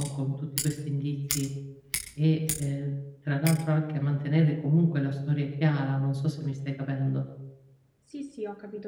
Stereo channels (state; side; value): identical; both; correlation 1.00